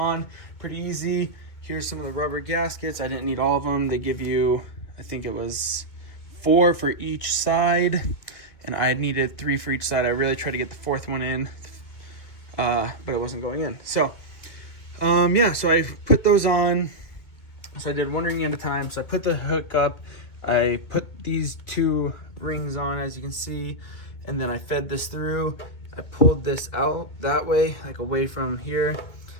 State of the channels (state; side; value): late; right; 2.2 ms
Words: Pretty easy. Here's some of the rubber gaskets. I didn't need all of them. They give you, I think it was 4 for each side, and I needed 3 for each side. I really tried to get the 4th one in, but it wasn't going in. So yeah, so I put those on. So I did one ring at a time. So I put the hook up, I put these 2 rings on, as you can see, and then I fed this through. I pulled this out that way, like away from here,